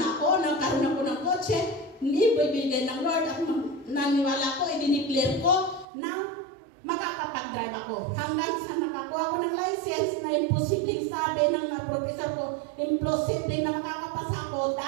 ako, nagkaroon ako ng kotse. Hindi ibibigay ng Lord. At naniwala ko, i-declare ko na makakapag-drive ako. Hanggang sa nakakuha ko ng license na imposible sabi ng professor ko, imposible na makakapasa ako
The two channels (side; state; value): left; drops out; at 5.9 s